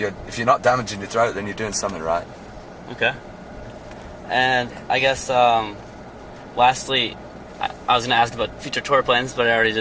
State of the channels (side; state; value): both; identical; correlation 1.00